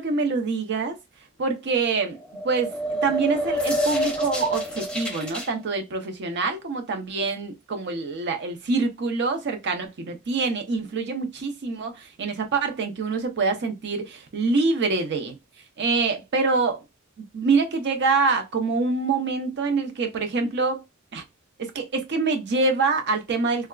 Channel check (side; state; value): left; quieter; 3.3 dB